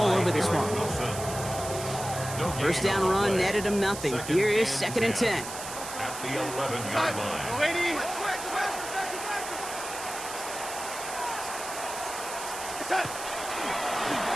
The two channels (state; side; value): noise; right; hiss, 9 dB below the sound